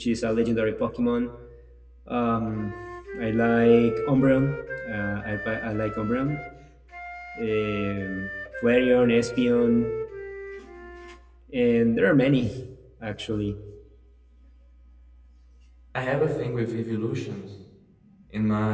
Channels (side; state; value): both; identical; correlation 1.00